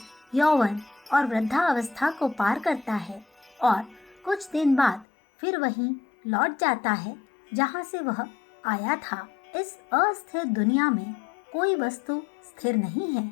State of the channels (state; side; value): drops out; right; at 5.1 s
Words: यौवन और वृद्धावस्था को पार करता है और कुछ दिन बाद फिर वहीं लौट जाता है जहां से वह आया था। इस अस्थिर दुनिया में कोई वस्तु स्थिर नहीं है।